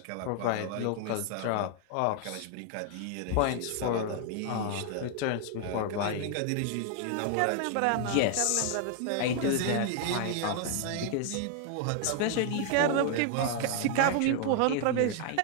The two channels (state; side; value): different; both; correlation 0.00